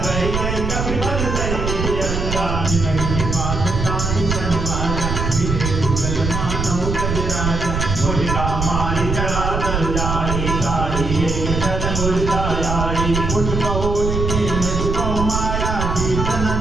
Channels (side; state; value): right; noise; rumble, 2 dB below the sound